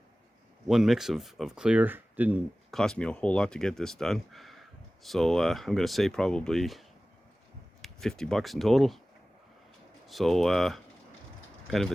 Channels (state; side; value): normal; both; correlation 0.97